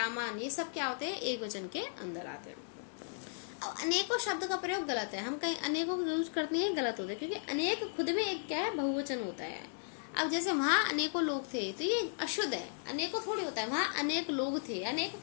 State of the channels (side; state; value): right; silent; digital silence